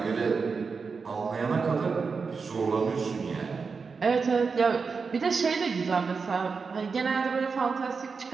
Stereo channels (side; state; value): left; quieter; 5.0 dB